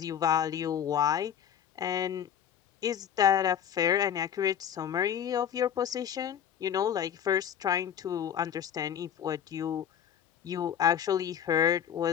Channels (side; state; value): right; quieter; 9.0 dB